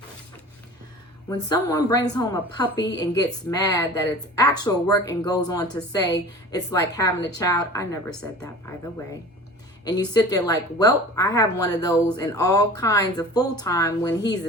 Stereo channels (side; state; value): both; normal; correlation 0.40